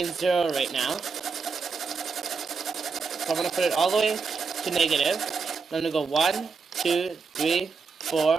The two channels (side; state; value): left; quieter; 5.0 dB